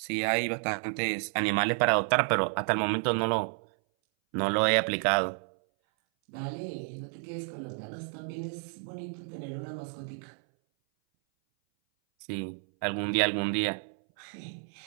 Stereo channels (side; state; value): left; silent; 58 dB below the other